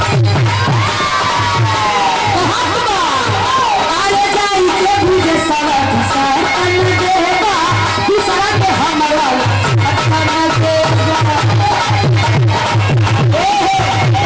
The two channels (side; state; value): both; identical; correlation 1.00